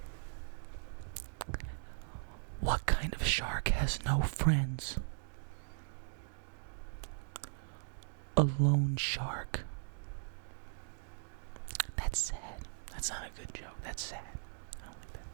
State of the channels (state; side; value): silent; left; digital silence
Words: What kind of shark has no friends? A lone shark. That's sad. That's not a good joke. That's sad. I don't like that.